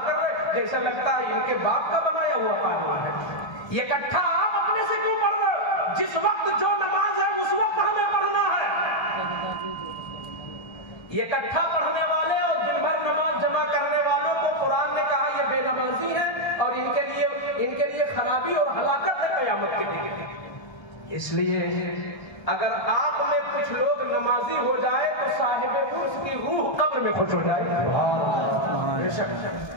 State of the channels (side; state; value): right; late; 1.3 ms